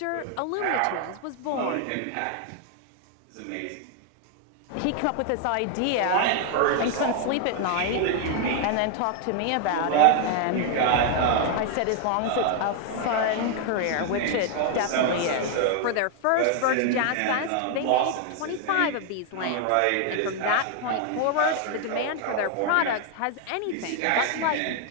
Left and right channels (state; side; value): different; both; correlation 0.00